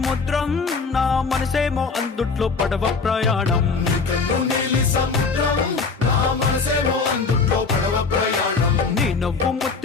నా మనసేమో అందుట్లో పడవ ప్రయాణం కన్ను నీలి సముద్రం నా మనసేమో అందుట్లో పడవ ప్రయాణం. నీ నవ్వు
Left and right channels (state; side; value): quieter; right; 4.6 dB